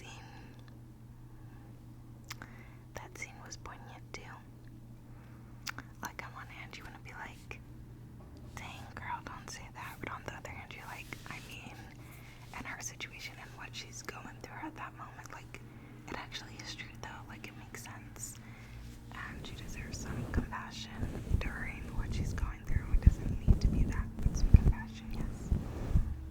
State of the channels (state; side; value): identical; both; correlation 1.00